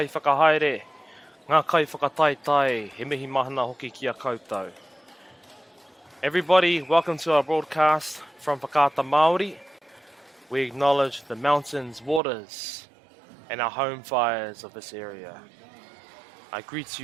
whakahaere, ngā kai whakataitai, he mihi mahana hoki ki a koutou. Everybody, welcome to our broadcast from Whakaata Māori. We acknowledge the mountains, waters, and our home fires of this area. I greet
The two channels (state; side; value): drops out; left; at 12.2 s